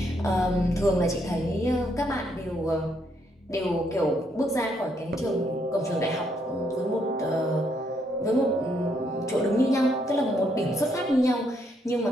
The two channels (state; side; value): normal; both; correlation 0.74